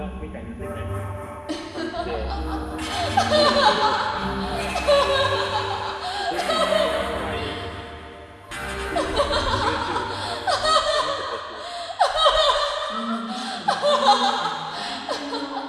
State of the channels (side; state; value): both; identical; correlation 1.00